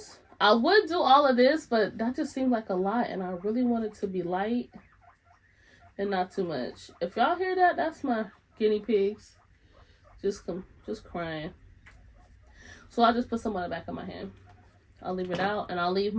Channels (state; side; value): identical; both; correlation 1.00